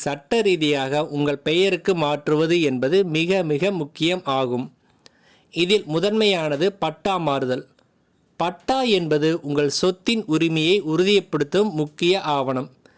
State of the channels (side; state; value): both; identical; correlation 1.00